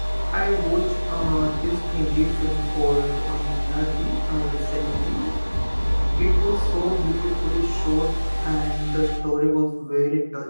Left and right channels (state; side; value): inverted; both; correlation -1.00